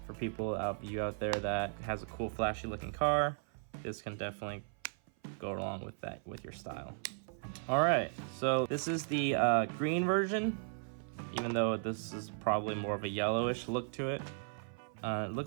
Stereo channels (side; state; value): left; silent; 54 dB below the other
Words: For people out there that has a cool flashy looking car, this can definitely go along with that, with your style. All right, so this is the green version, even though this is probably more of a yellowish look to it. It